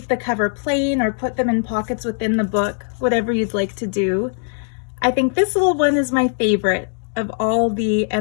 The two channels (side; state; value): right; silent; digital silence